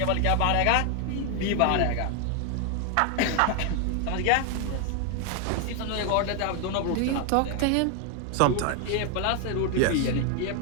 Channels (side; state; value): both; different; correlation 0.01